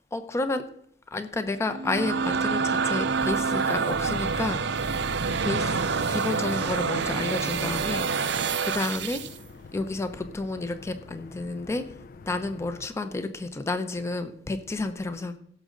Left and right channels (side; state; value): both; normal; correlation 0.26